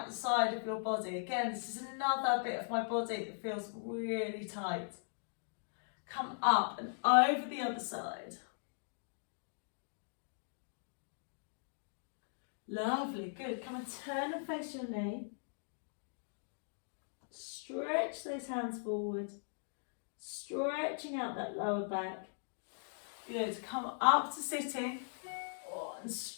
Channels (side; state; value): right; silent; digital silence